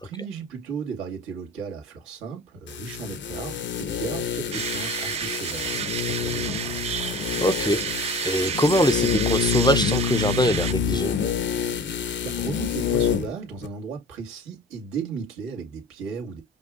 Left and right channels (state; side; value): normal; both; correlation 0.39